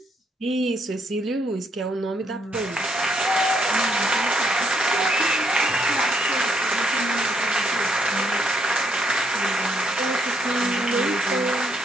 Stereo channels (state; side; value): normal; both; correlation 0.72